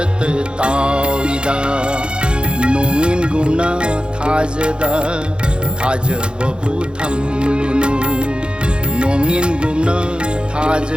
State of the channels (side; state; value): left; late; 0.052 ms